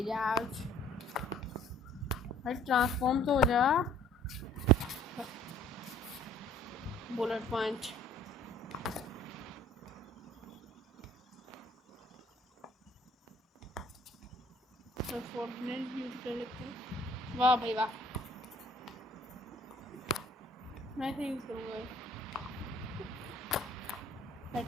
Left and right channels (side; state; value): both; normal; correlation 0.56